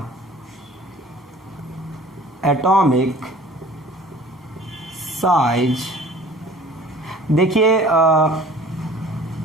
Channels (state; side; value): normal; both; correlation 0.47